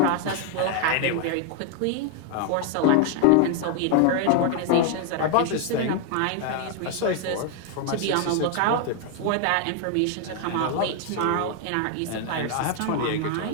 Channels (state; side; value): different; both; correlation 0.00